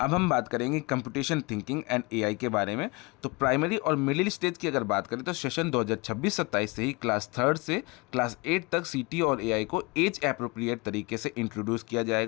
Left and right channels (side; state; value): right; quieter; 26.4 dB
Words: हम बात करेंगे कंप्यूटेशन थिंकिंग एंड AI के बारे में। तो प्राइमरी और मिडिल स्टेज की अगर बात करें तो सेशन 2026-27 से ही क्लास 3rd से क्लास 8 तक CT और AI को एज एप्रोप्रिएट तरीके से इंट्रोड्यूस किया